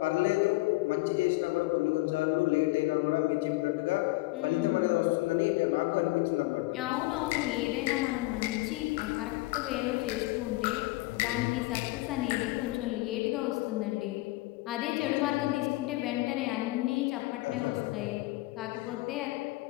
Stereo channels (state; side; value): quieter; right; 20.8 dB